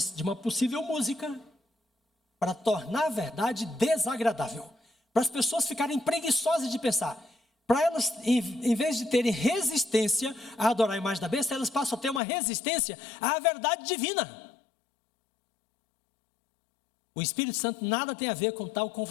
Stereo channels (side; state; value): right; drops out; at 12.2 s